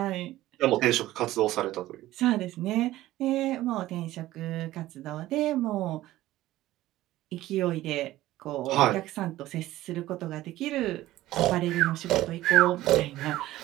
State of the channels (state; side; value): quieter; left; 15.7 dB